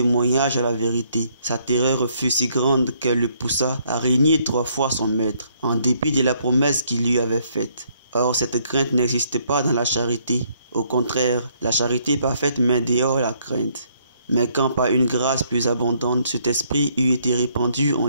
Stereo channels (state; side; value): inverted; both; correlation -0.68